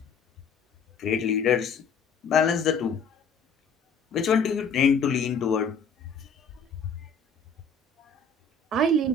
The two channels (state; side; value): quieter; right; 4.3 dB